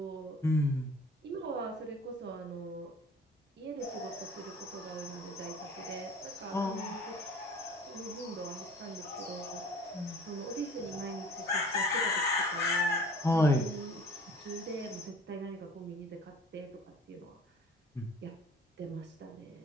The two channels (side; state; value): both; normal; correlation 0.48